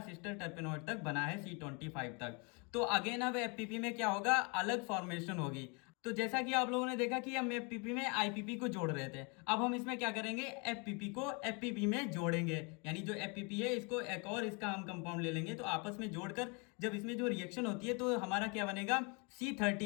सिस्टर टर्पेनॉइड तक बना है C25 तक। तो अगेन अब एफपीपी में क्या होगा, अलग फॉर्मेशन होगी। तो जैसा कि आप लोगों ने देखा कि हम एफपीपी में आईपीपी को जोड़ रहे थे, अब हम इसमें क्या करेंगे, एफपीपी को एफपीपी में जोड़ेंगे, यानी जो एफपीपी है इसको एक और इसका हम कंपाउंड ले लेंगे तो आपस में जोड़कर जब इसमें जो रिएक्शन होती है तो हमारा क्या बनेगा,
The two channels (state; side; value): quieter; right; 32.0 dB